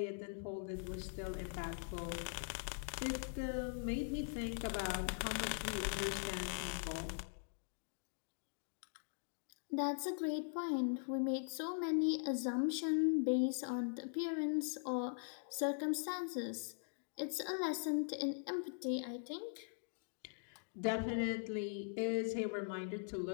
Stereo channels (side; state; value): right; silent; digital silence